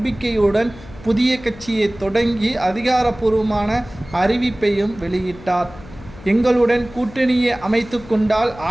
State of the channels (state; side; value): noise; left; hum, 18 dB below the sound